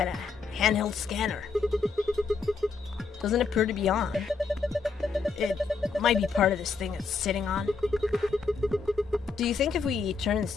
of handheld scanner. Doesn't appear to be on. It might be part of this thing it's sitting on. Do you think if we turn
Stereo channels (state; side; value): quieter; right; 4.6 dB